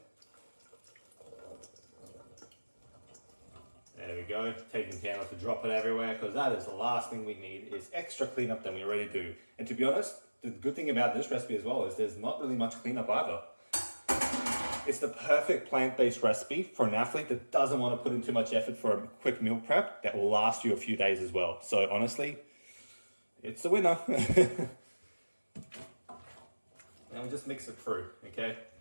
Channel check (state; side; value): inverted; both; correlation -1.00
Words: There we go, taking care not to drop it everywhere because that is the last thing we need is extra cleanup than we already do. And to be honest, the good thing about this recipe as well is there's not really much cleanup either. It's the perfect plant-based recipe for an athlete that doesn't want to put in too much effort for a quick meal prep that will last you a few days as well. So honestly, it's a winner. And we just mix it through, okay?